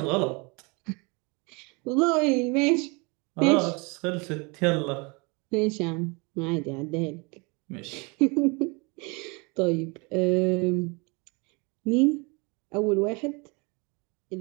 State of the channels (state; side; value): quieter; left; 29.7 dB